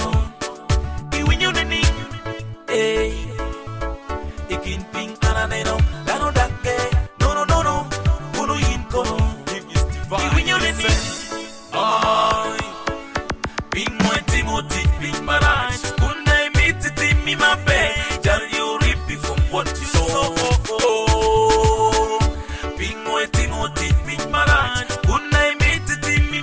Iwinyo nini, eh. Ikin ping araneno, gano dage. No no no no, uno yin kono. Iwinyo nini, ay. Ping mo Timothy, ping maraj. Kunai miti timi mabe. Jar you rippy from what you saw. Ping mo Timothy, ping maraj. Kunai miti timi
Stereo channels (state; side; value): identical; both; correlation 1.00